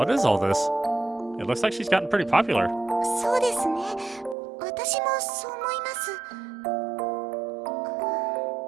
is all this? It looks like she's gotten pretty popular. そうですね。私もそう思います。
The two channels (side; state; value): left; drops out; at 4.4 s